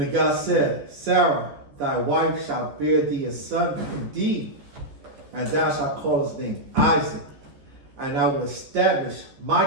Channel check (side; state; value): left; late; 14 ms